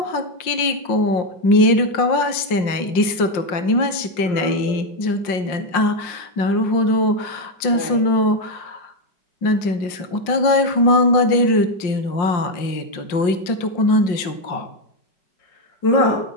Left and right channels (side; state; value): right; late; 5.6 ms